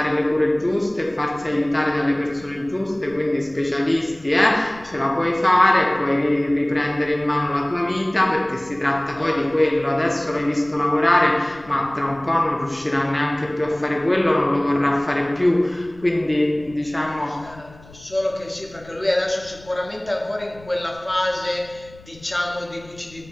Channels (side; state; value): left; noise; rumble, 23 dB below the sound